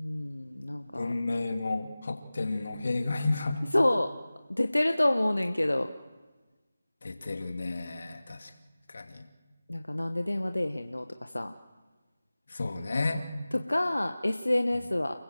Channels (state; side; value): inverted; both; correlation -0.98